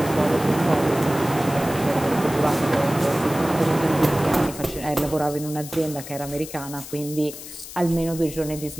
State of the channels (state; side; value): noise; left; hiss, 13 dB below the sound